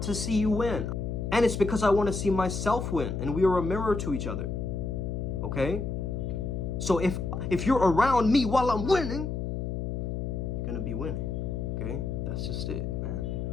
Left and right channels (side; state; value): left; noise; hum, 3 dB below the sound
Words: to see you win. And it's because I want to see myself win, and we are a mirror to each other. Okay? So if you're around me while I'm winning, you're going to be winning. Okay? That's just it, man.